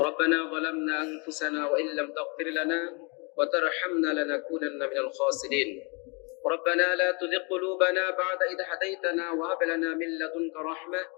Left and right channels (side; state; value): right; quieter; 32.7 dB